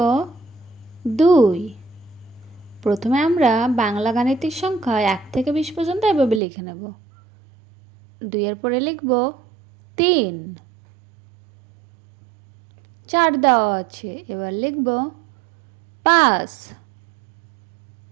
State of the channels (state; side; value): drops out; left; at 6.4 s